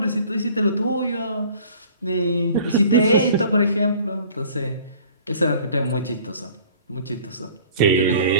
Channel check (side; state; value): both; inverted; correlation -0.50